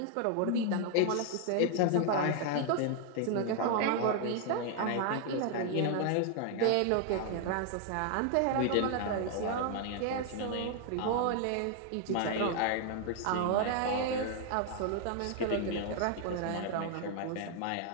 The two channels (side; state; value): both; different; correlation 0.00